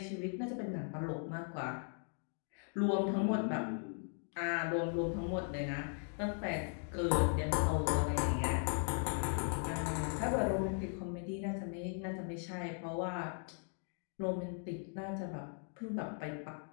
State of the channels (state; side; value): silent; right; 52 dB below the other